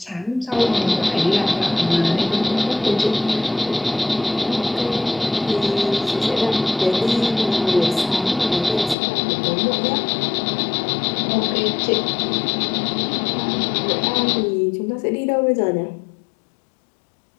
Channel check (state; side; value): drops out; right; at 9.0 s